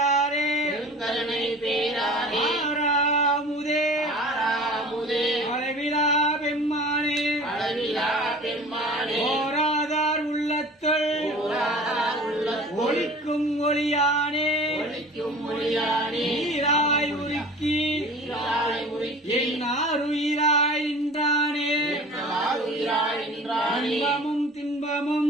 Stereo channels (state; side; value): normal; both; correlation 0.42